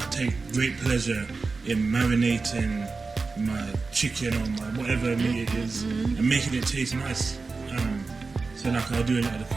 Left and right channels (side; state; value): left; quieter; 4.1 dB